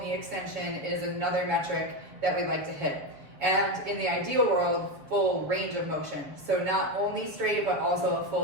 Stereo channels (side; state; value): left; late; 7.0 ms